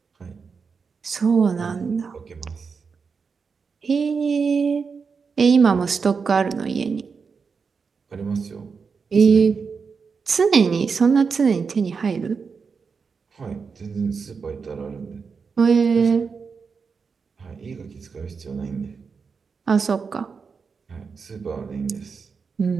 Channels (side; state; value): left; quieter; 5.4 dB